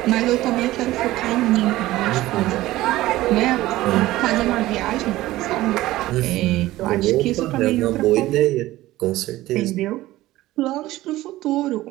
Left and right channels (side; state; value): left; quieter; 16.6 dB